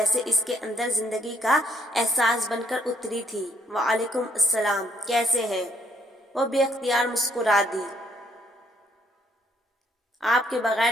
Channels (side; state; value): both; normal; correlation 0.69